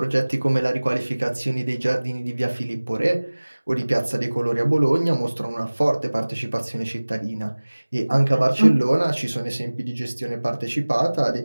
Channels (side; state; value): both; inverted; correlation -1.00